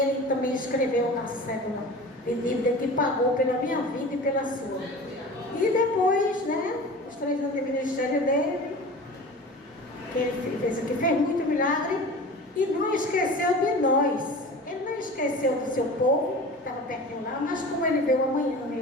também escreveu a cédula de dívida que pagou pela minha vida e pela sua. E depois, né, os 3 anos de ministério dele, que ele fez muito milagre, e não esqueceu de nós. Ele não esqueceu do seu povo, que estava pertinho lá, mas como ele vê o amanhã,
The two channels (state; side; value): normal; both; correlation 0.36